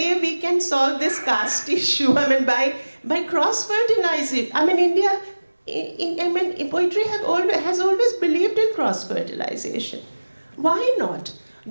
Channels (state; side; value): inverted; both; correlation -1.00